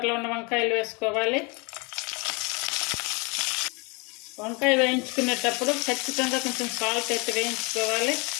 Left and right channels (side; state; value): right; quieter; 29.7 dB